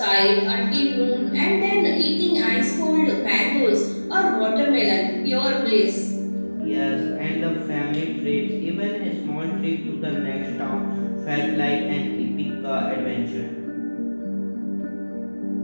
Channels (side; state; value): both; inverted; correlation -1.00